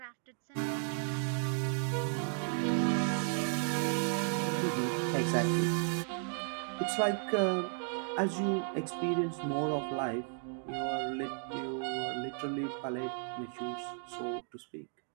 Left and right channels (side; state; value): left; silent; 55 dB below the other